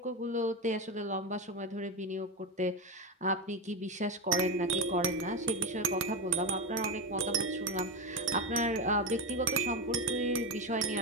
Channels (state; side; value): normal; both; correlation 0.15